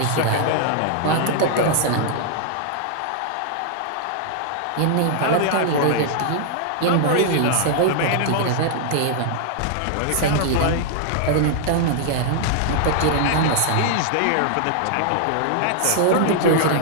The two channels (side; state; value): both; different; correlation -0.01